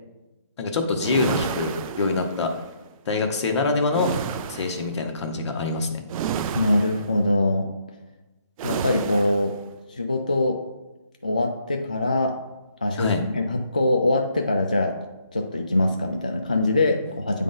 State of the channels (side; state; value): both; inverted; correlation -0.70